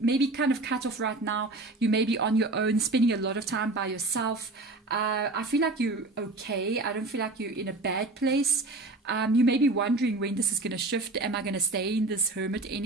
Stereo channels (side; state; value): left; quieter; 3.0 dB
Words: kind of cut off right now. You may be on your own, spending a lot of time by yourself. I feel like you're okay. I don't feel like you're in a bad place. You may be wondering when this is going to shift. Am I going to stay in this hermit